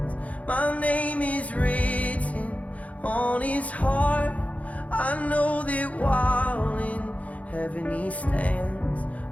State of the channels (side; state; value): right; late; 0.068 ms